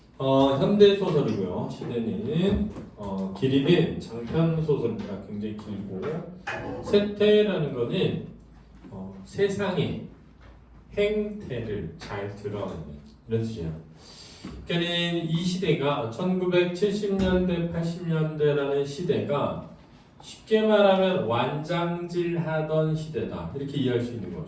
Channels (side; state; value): both; identical; correlation 1.00